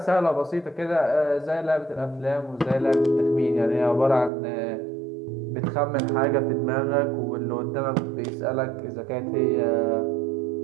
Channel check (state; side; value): drops out; left; at 4.3 s